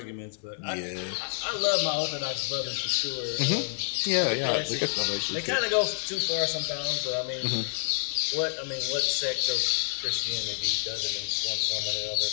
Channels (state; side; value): silent; right; digital silence